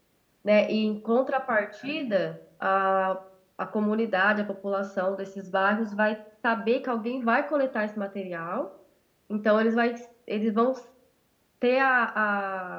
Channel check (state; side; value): identical; both; correlation 1.00